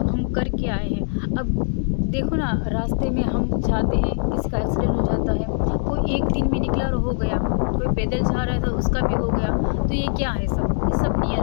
हम करके आए हैं। अब देखो ना, रास्ते में हम जाते हैं, किसी का एक्सीडेंट हो जाता है, कोई एक दिन में निकला और हो गया, कोई पैदल जा रहा था उसका भी हो गया। तो ये क्या है, ये सब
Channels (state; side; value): silent; right; 59 dB below the other